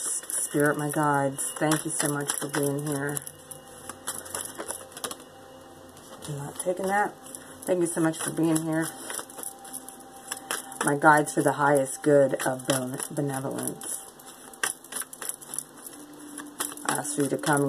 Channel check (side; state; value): both; identical; correlation 1.00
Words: Spirit, my guides, thank you so much for being here. I'm not taking that. Thank you so much for being here. My guides for the highest good of benevolence. I ask you to come